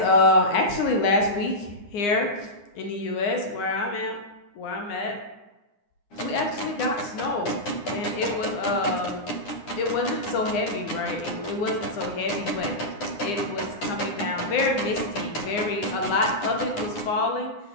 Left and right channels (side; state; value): right; late; 9.8 ms